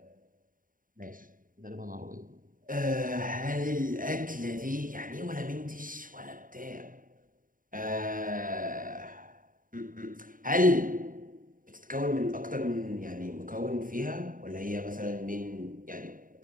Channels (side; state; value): left; late; 0.40 ms